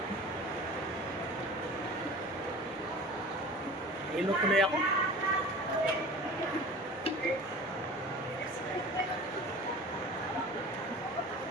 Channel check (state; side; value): normal; both; correlation 0.40